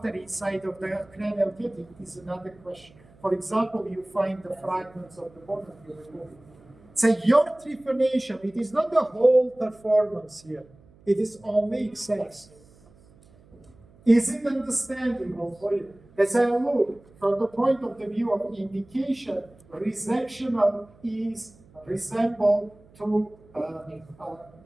inside of the cranial cavity is another question. For example, you find the fragments of the bone and you remove it. So your trephination, it is not the whole performance here. It is only excess. Is it understandable for you? As I look from the point of the view of indication, resectional is resemble to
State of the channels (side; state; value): right; noise; hum, 27 dB below the sound